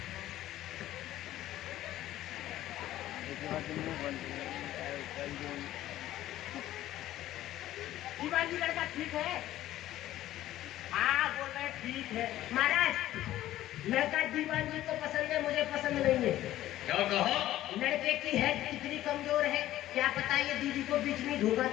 दीवान जी लड़का ठीक है? हाँ बोल रहे ठीक है। महाराज लड़का दीवान जी को पसंद है, मुझे पसंद नहीं है। क्या कहा? लड़के की हेड कितनी कमजोर है, क्या पता ये दीदी को बीच में धोखा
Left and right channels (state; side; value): quieter; right; 14.1 dB